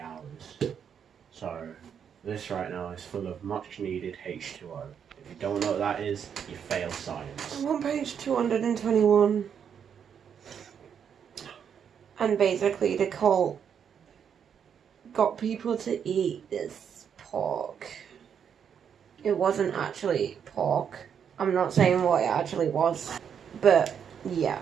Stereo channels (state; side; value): quieter; left; 7.8 dB